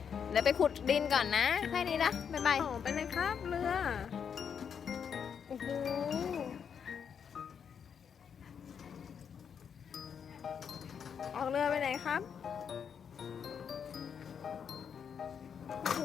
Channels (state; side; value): quieter; right; 7.3 dB